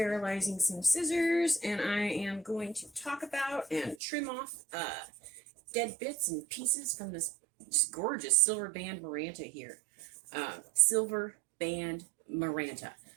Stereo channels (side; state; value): left; drops out; at 4.0 s